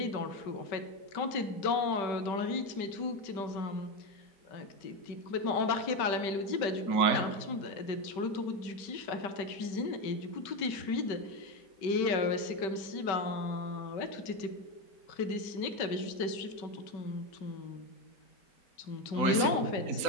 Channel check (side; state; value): right; late; 5.2 ms